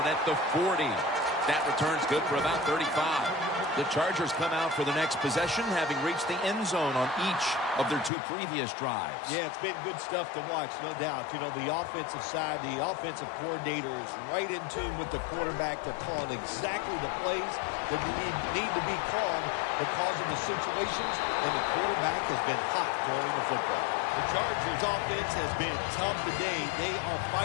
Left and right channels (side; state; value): right; drops out; at 8.1 s